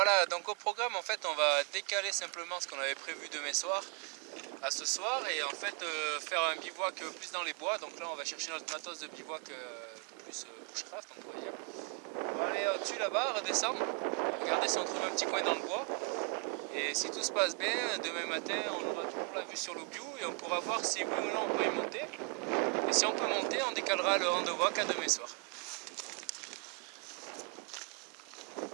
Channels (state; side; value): quieter; left; 36.1 dB